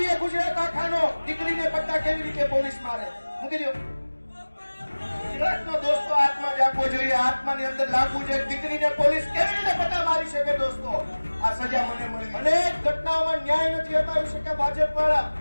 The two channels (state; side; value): inverted; both; correlation -1.00